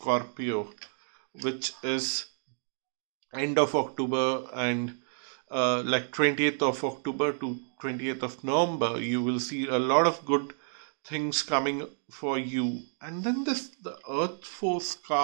which is end of October, and like 20th of October to 20th of November, you will see a lot of good things coming for you. And then the Earth Force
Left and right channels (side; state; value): left; silent; 58 dB below the other